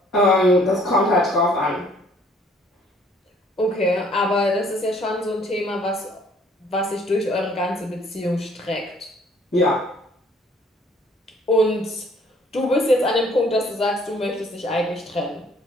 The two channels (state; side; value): normal; both; correlation 0.59